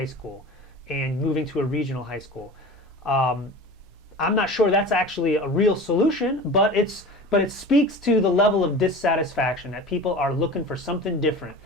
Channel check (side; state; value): both; normal; correlation 0.35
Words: school and moving to a regional high school. I'm not sure that's actually a real solution, but it speaks to the level of dissatisfaction that people are looking for something different.